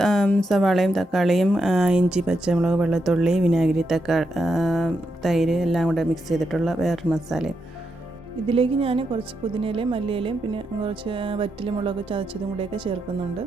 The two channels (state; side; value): normal; both; correlation 0.83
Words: സവാളയും തക്കാളിയും ഇഞ്ചി പച്ചമുളക് വെളുത്തുള്ളി വിനാഗിരി തൈര് എല്ലാം കൂടെ മിക്സ് ചെയ്തിട്ടുള്ള വേറൊരു മസാലയും. ഇതിലേക്ക് ഞാൻ കുറച്ച് പുതിനയിലയും മല്ലിയിലയും പിന്നെ കുറച്ച് വറ്റൽമുളക് ചതച്ചതും കൂടെയൊക്കെ ചേർക്കുന്നുണ്ട്.